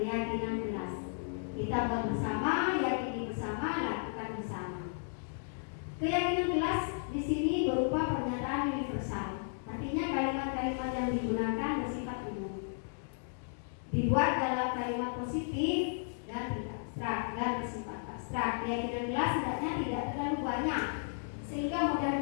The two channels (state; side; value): silent; right; digital silence